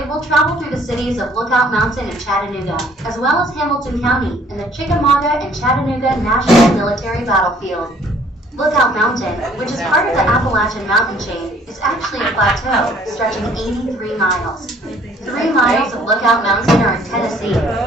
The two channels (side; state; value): both; normal; correlation 0.59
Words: will travel through the cities of Lookout Mountain and Chattanooga, as well as Hamilton County and the Chickamauga and Chattanooga National Military Battlefield. Lookout Mountain, which is part of the Appalachian mountain chain, is actually a plateau stretching 83 miles. 3 miles of Lookout Mountain are in Tennessee,